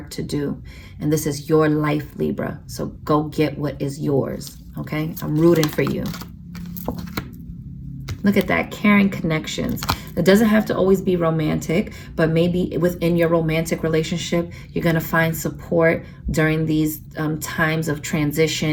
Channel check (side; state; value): both; identical; correlation 1.00